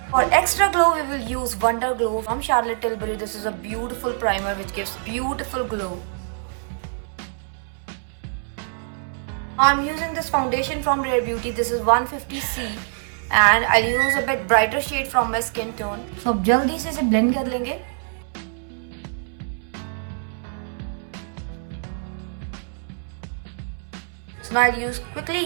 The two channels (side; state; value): left; silent; 62 dB below the other